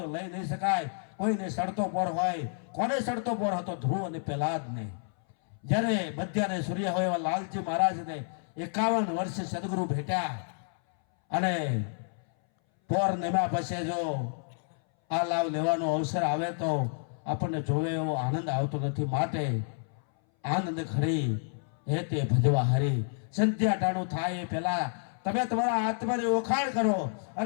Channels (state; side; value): silent; right; 58 dB below the other